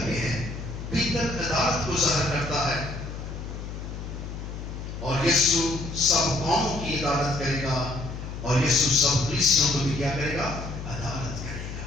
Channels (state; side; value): noise; left; hum, 8 dB below the sound